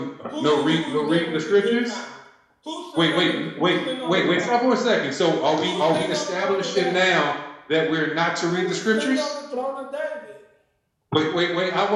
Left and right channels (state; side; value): identical; both; correlation 1.00